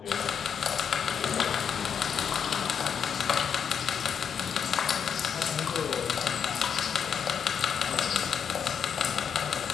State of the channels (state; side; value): quieter; right; 7.4 dB